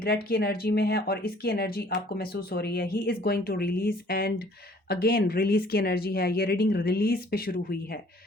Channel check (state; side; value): normal; both; correlation 0.56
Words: की एनर्जी में है और इसकी एनर्जी आपको महसूस हो रही है। He is going to release and again release की एनर्जी है। ये रीडिंग रिलीज पे शुरू हुई है।